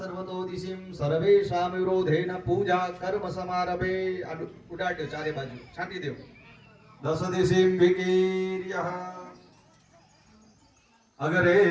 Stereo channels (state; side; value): identical; both; correlation 1.00